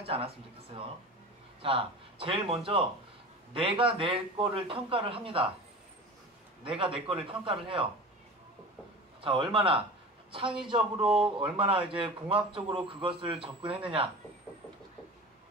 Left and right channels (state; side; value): normal; both; correlation 0.34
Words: 않았으면 좋겠어요. 자, 제일 먼저 내가 내 거를 평가를 합니다. 내가 내 거를 평가를 해요. 자, 얼마나 창의적으로, 얼마나 이제 공학적으로 그것을 접근했느냐.